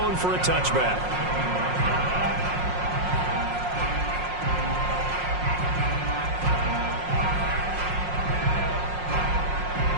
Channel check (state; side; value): late; left; 5.5 ms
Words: for a touchback.